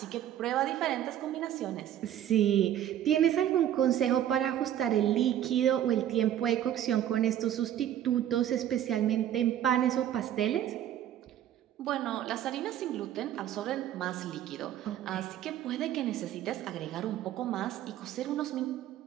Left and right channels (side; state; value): left; quieter; 11.2 dB